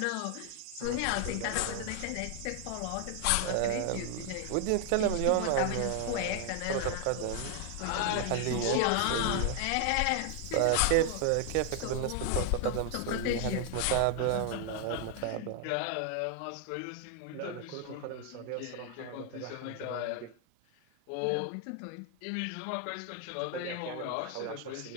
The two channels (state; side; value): different; both; correlation 0.00